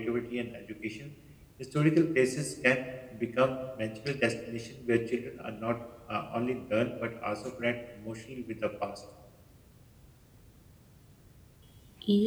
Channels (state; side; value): identical; both; correlation 1.00